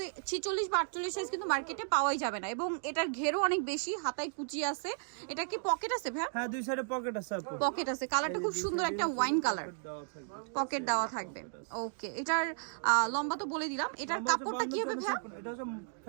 46 বা 48 সাইজ কিন্তু মার্কেটে পাওয়াই যাবে না। এবং এটার ঘেরও অনেক বেশি, হাতায় কুচি আছে। এটা কি পকেট আছে ভাইয়া? হ্যাঁ, দুই সাইডে পকেট আছে আপু। পকেট আছে, কালারটা খুব সুন্দর একটা ওয়াইন কালার, পকেট দেওয়া থাকবে। ওকে, এটার লম্বা তো বলে দিলাম। এটার কাপড়টা কি হবে ভাই? এটা হচ্ছে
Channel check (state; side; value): silent; left; digital silence